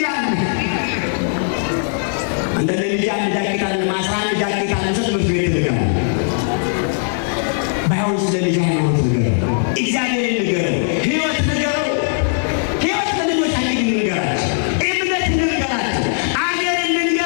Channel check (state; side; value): silent; right; digital silence